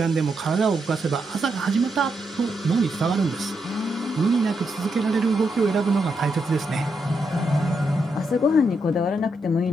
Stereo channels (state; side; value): normal; both; correlation 0.82